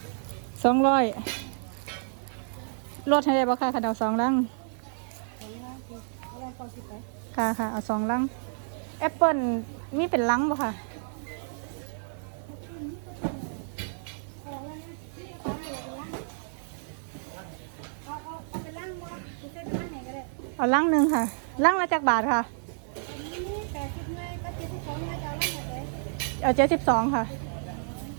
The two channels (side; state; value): left; silent; digital silence